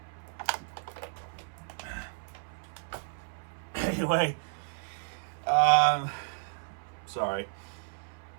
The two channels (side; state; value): left; silent; 56 dB below the other